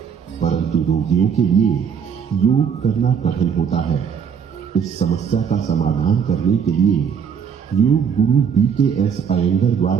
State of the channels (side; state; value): left; quieter; 7.2 dB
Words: परंतु रोगियों के लिए योग करना कठिन होता है। इस समस्या का समाधान करने के लिए योग गुरु BKS अयंगर